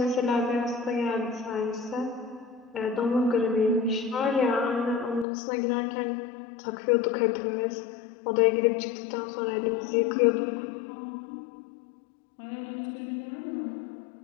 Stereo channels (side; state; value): right; drops out; at 5.2 s